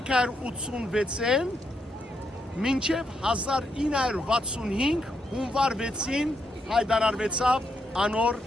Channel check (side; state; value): both; normal; correlation 0.80